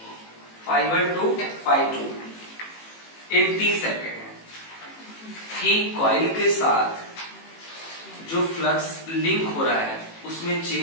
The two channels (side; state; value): right; late; 18 ms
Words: ∅1 टू ∅2 इन t सेकेंड, कि कॉइल के साथ जो फ्लक्स लिंक हो रहा है उसमें